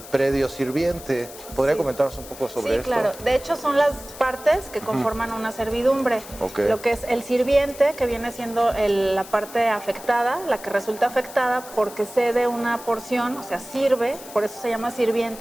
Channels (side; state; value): left; noise; hiss, 16 dB below the sound